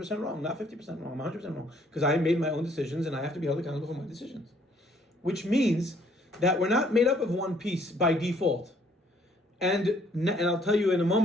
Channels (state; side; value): normal; both; correlation 0.63